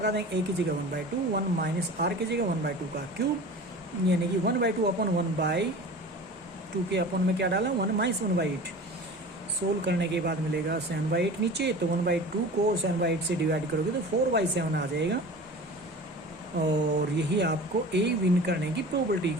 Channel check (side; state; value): both; normal; correlation 0.37